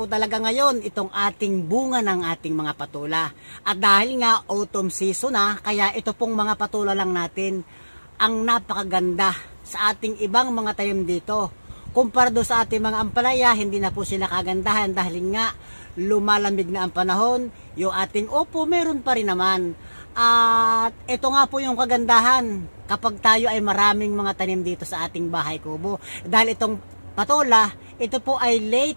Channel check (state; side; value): inverted; both; correlation -1.00